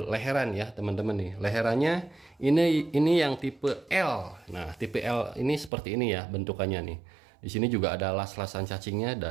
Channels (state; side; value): drops out; left; at 5.7 s